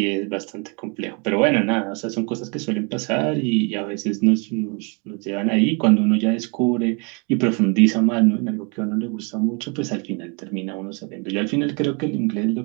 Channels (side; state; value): left; quieter; 33.8 dB